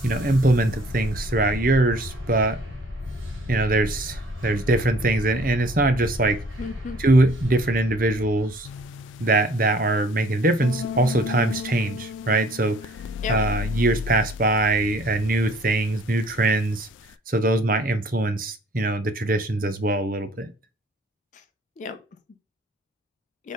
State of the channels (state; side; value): normal; both; correlation 0.55